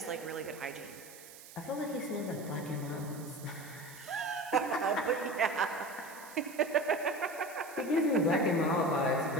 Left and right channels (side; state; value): right; noise; hiss, 17 dB below the sound